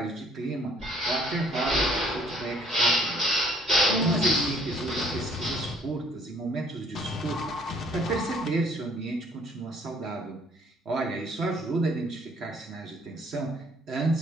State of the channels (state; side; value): normal; both; correlation 0.60